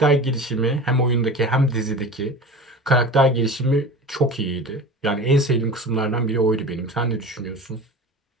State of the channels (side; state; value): both; normal; correlation 0.34